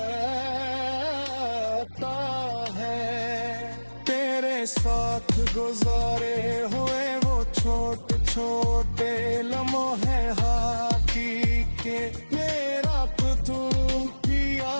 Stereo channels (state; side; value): inverted; both; correlation -1.00